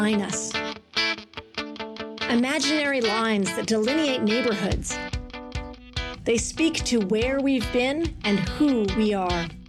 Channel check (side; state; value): both; identical; correlation 1.00